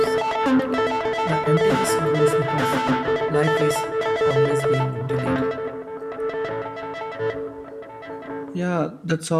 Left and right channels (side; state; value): both; identical; correlation 1.00